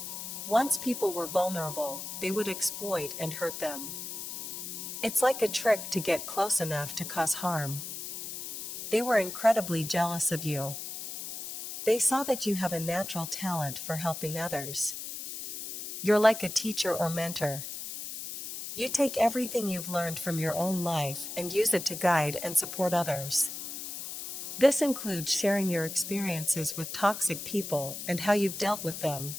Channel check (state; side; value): noise; left; hiss, 7 dB below the sound